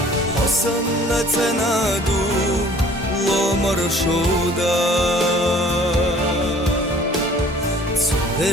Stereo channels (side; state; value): both; normal; correlation 0.52